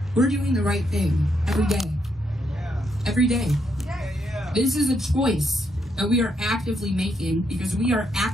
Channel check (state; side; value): normal; both; correlation 0.77